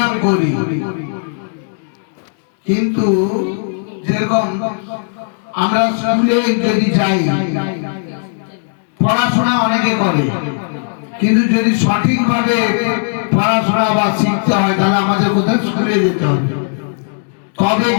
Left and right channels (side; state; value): right; silent; digital silence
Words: করি, কিন্তু যেরকম আমরা স্কুলে যদি যাই, পড়াশোনা অনেকে করে, কিন্তু যদি সঠিকভাবে পড়াশোনা বা শিখতে হয়, তাহলে আমাদের কোথায় স্কুলে যেতে হবে, তবে